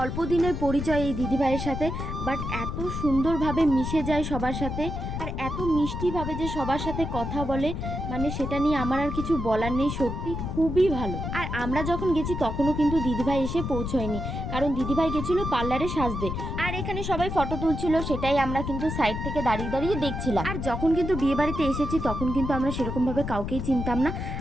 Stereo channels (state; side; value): noise; left; rumble, 4 dB below the sound